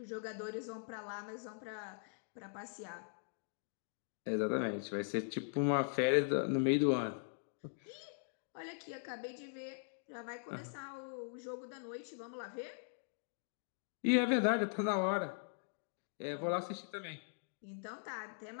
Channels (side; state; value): right; silent; digital silence